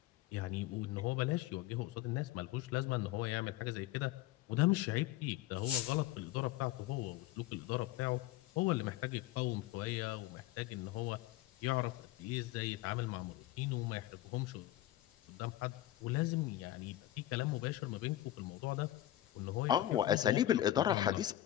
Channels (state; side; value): quieter; right; 14.4 dB